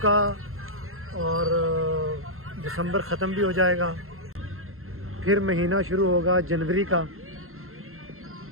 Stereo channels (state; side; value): late; left; 0.62 ms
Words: और दिसंबर ख़त्म भी हो जाएगा, फिर महीना शुरू होगा जनवरी का।